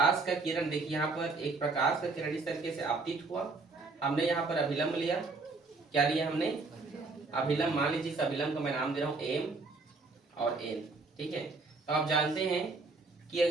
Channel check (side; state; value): left; quieter; 3.8 dB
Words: का किरण, देखिए यहाँ पर एक प्रकाश का किरण इस तरीके से आपतित हुआ, हमने यहाँ पर अभिलंब लिया। क्या लिया हमने? अभिलंब। मान लीजिए इस अभिलंब का मैं नाम दे रहा हूँ एम और एन, ठीक है। तो आप जानते हैं कि